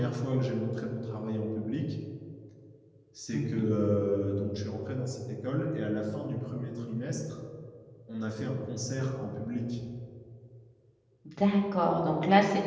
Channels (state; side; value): identical; both; correlation 1.00